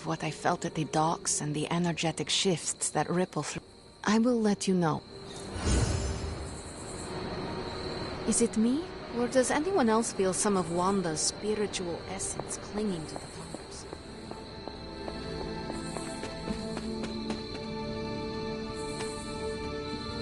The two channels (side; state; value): both; identical; correlation 1.00